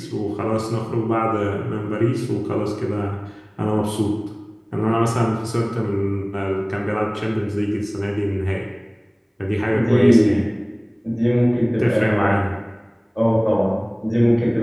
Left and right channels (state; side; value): identical; both; correlation 1.00